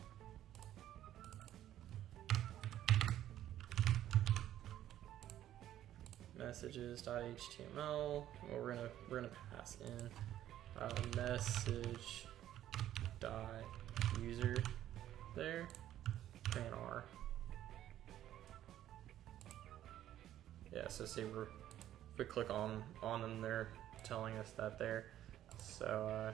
messages.html. Well, we're gonna pass in message.user there, command R. Yeah, so say we're if we click on them, they're telling us that there. So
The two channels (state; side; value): quieter; left; 12.2 dB